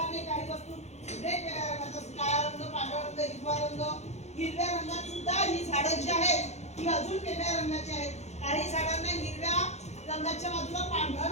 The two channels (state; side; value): late; right; 0.32 ms